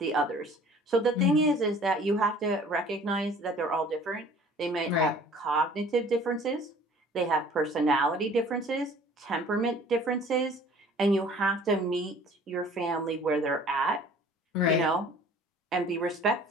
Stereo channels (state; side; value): normal; both; correlation 0.50